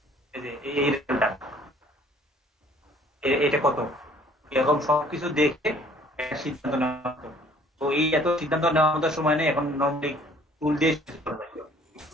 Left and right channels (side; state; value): both; normal; correlation 0.56